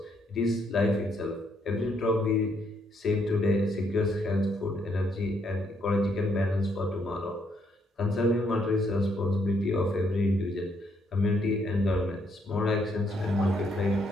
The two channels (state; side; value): normal; both; correlation 0.73